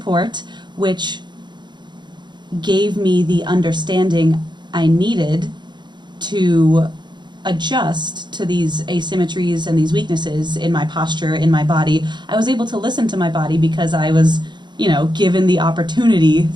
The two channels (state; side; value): late; left; 0.22 ms